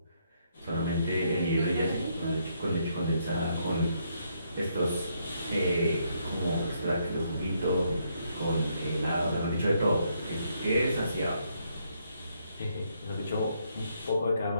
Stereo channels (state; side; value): inverted; both; correlation -0.74